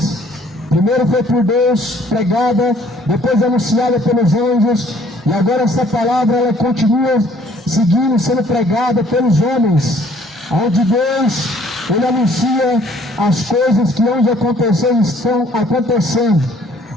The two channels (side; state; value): both; normal; correlation 0.59